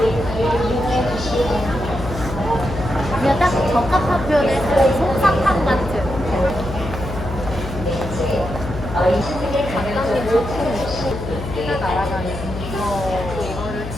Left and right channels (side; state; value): left; noise; hum, 8 dB below the sound